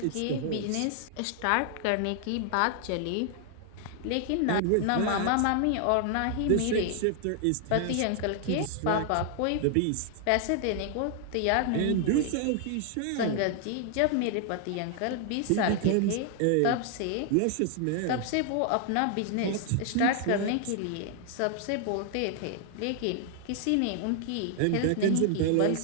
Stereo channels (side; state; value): both; different; correlation 0.00